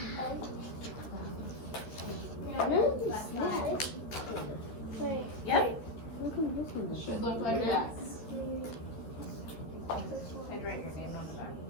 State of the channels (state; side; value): late; right; 13 ms